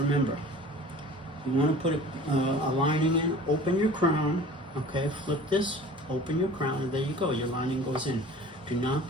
you want to put a lining in, open your crown, okay, flip this, open your crown, and there you go, your lining goes in. Do not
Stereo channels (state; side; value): normal; both; correlation 0.44